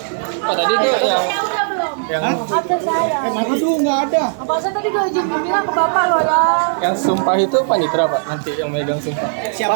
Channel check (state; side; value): silent; left; digital silence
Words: Tadi tuh yang Absen saya. aduh nggak ada. Apa saya tadi udah izin bilang ke bapak loh ya. Yang sumpah itu panitra Pak, nanti yang megang sumpah.